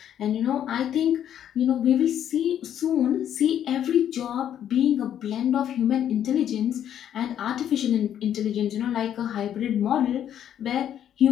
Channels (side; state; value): right; quieter; 10.1 dB